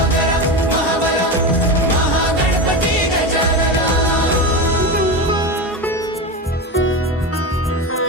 महाबल महागणपती गजानना।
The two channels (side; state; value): both; normal; correlation 0.20